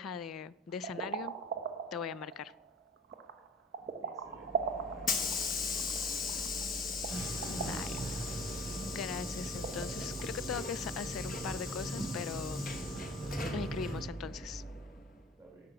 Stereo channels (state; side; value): normal; both; correlation 0.43